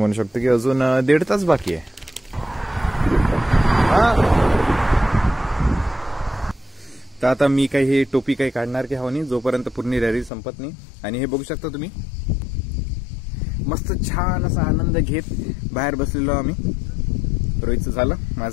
शकतो की अजून 1.5 तास बाकी आहे. तर आता मी काही हे टोपी काही काढणार की हवं नाही जोपर्यंत पूर्ण रॅली संपत नाही. आणि हे बघू शकता तुम्ही मस्त छान असा आनंद घेत बाहेर बसलेलो आम्ही. रोहितचं झालं,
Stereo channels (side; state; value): right; drops out; at 10.3 s